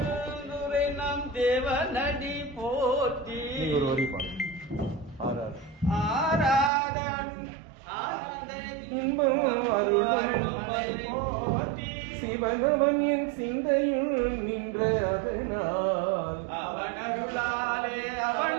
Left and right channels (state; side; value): drops out; left; at 6.7 s